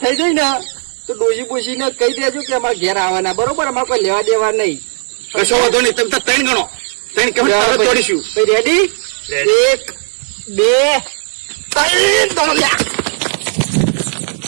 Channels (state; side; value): silent; left; digital silence